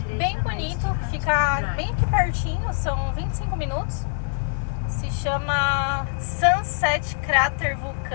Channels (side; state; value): right; silent; 59 dB below the other